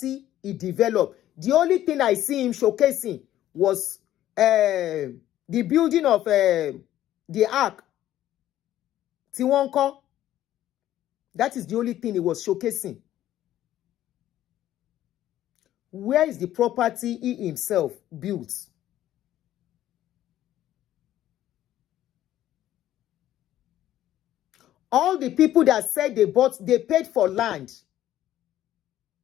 he developed. The only thing I see him showcasing was the building of the ark. Tiwonko. That is the only thing he was showcasing. Where is the property he himself built? All the people that said they paid for land.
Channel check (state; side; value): quieter; right; 12.9 dB